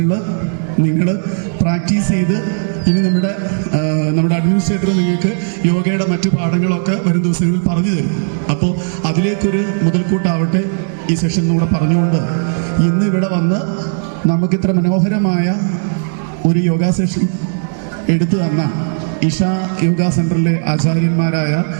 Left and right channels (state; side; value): silent; left; digital silence